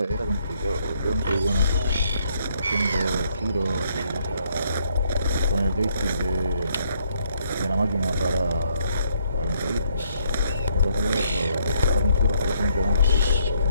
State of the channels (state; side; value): inverted; both; correlation -0.70